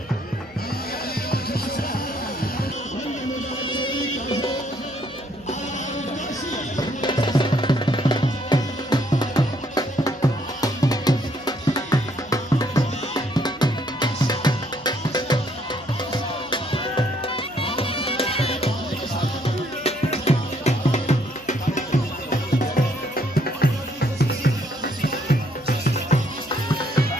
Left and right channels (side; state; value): right; noise; hum, 27 dB below the sound